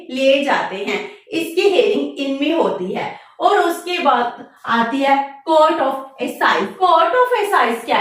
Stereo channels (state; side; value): identical; both; correlation 1.00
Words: लिए जाते हैं। इसकी हेयरिंग इनमें होती है। और उसके बाद आती है कोर्ट ऑफ एसाइज। कोर्ट ऑफ एसाइज क्या